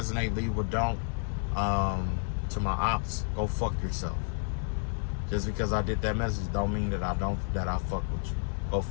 leave what don't. To my ops, go fuck yourself. Just because I did that message don't mean that I fuck with you. Go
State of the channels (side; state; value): right; silent; 57 dB below the other